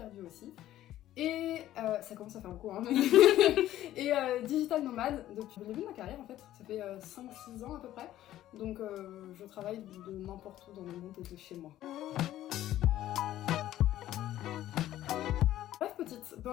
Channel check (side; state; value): right; quieter; 13.4 dB